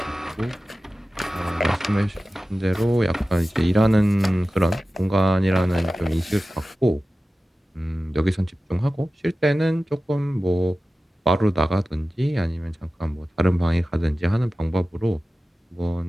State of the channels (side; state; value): both; normal; correlation 0.95